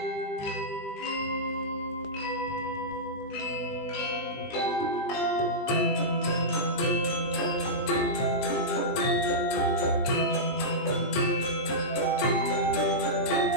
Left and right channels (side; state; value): right; late; 20 ms